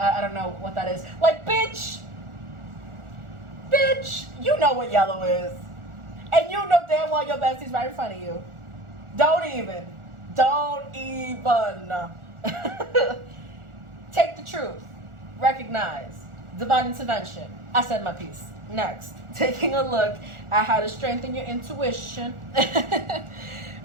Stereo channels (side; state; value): left; late; 1.4 ms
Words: don't know what that is. Like, bitch, you know what yellow is. And you know damn well your bestie's right in front of you. Don't even. Take the truth. Recognize. Divine intervention. I said my piece. Next, taking a look at how to strengthen your intuition.